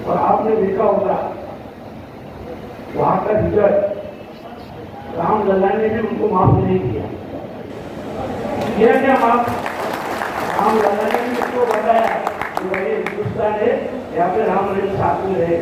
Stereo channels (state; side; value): identical; both; correlation 1.00